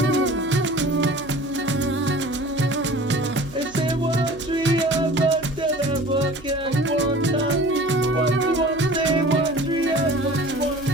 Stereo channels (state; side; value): noise; right; hum, 21 dB below the sound